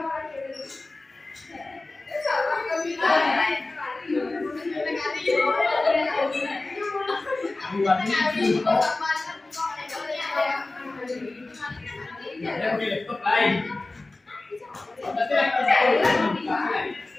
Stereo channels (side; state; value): right; quieter; 3.1 dB